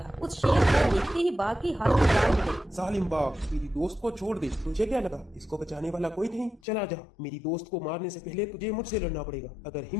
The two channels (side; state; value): right; drops out; at 6.6 s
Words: उस शेर को देखते ही बाघ की हालत खराब हो गई। जालिम बाघ, मेरी दोस्त को छोड़ दे। तुझे क्या लगा इसको बचाने वाला कोई नहीं? चला जा, मेरी दोस्त को मारने से पहले तुझे मुझसे लड़ना पड़ेगा। अगर